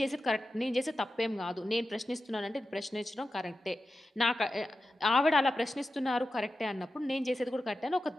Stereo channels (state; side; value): normal; both; correlation 0.92